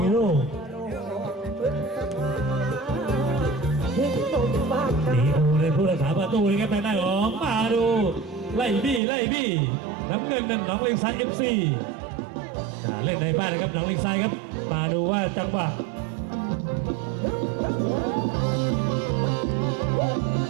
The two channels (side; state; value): left; drops out; at 9.0 s